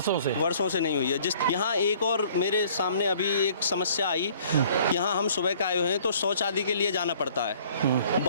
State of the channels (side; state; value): both; inverted; correlation -0.56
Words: से नहीं हुई है। जिस यहाँ एक और मेरे सामने अभी एक समस्या आई, यहाँ हम सुबह का आए हुए हैं तो शौच आदि के लिए जाना पड़ता है।